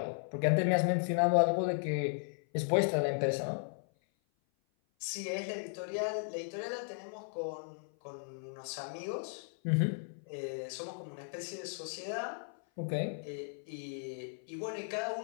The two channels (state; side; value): silent; right; 54 dB below the other